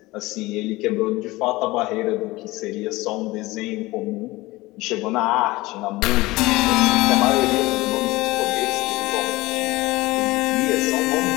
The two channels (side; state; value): right; quieter; 20.2 dB